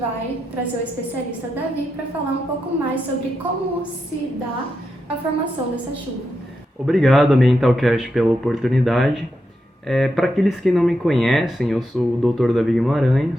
trazer o especialista Davi para falar um pouco mais sobre como se dá a formação dessa chuva. Obrigado, Ambientalcast, pela oportunidade. Para aqueles que não me conhecem, eu sou o Dr. Davi Guimarães,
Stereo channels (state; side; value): normal; both; correlation 0.85